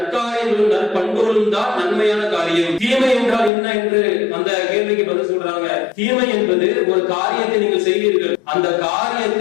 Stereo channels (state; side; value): drops out; right; at 3.5 s